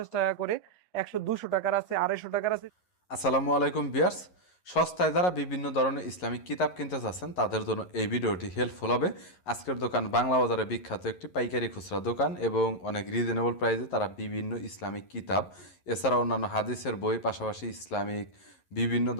টাকা করে, 100-200 টাকার আছে, 250 টাকার আছে। আসসালামু আলাইকুম ভিউয়ার্স। সস্তায় যারা বিভিন্ন ধরনের ইসলামিক কিতাব কিনতে চাচ্ছেন তাদের জন্য এই ভিডিওটি হেল্পফুল হবে। আজকের দোকান বাংলা বাজারে বিখ্যাত একটি পাইকারি খুচরা দোকান এবং অনেক রিজনেবল প্রাইসে তারা বিভিন্ন ইসলামিক কিতাব এছাড়া অন্যান্য হাদিসের বই পাশাপাশি ইসলামিক বিভিন্ন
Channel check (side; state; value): right; late; 11 ms